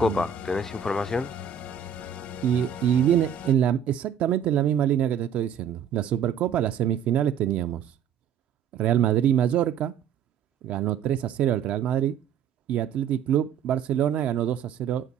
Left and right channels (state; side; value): quieter; left; 8.1 dB